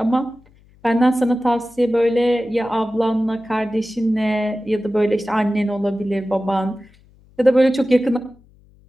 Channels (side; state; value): left; noise; hum, 29 dB below the sound